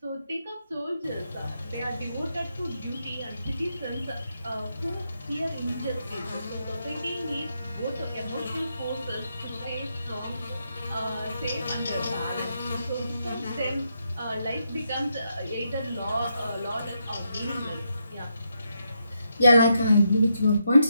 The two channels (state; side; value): inverted; both; correlation -0.81